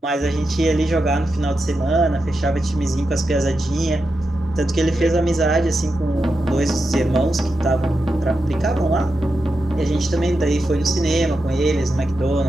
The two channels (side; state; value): both; normal; correlation 0.88